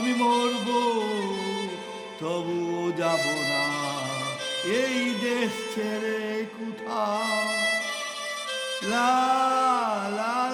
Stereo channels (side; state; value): both; identical; correlation 1.00